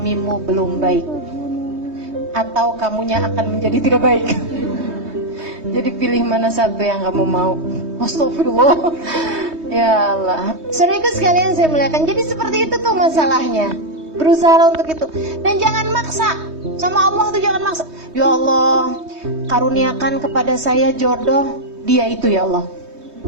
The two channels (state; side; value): late; left; 3.2 ms